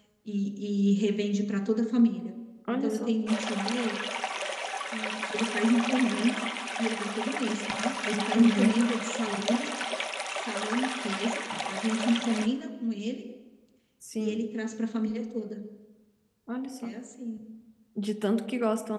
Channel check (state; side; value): identical; both; correlation 1.00